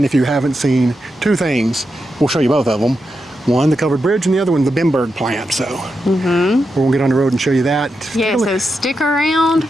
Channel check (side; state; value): both; normal; correlation 0.87